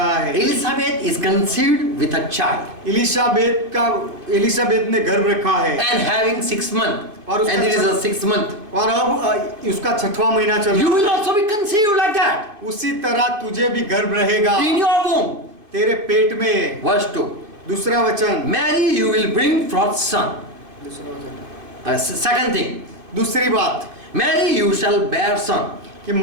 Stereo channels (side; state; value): left; late; 2.5 ms